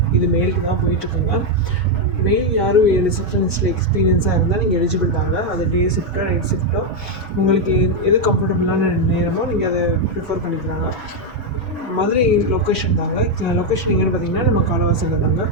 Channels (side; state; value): both; normal; correlation 0.02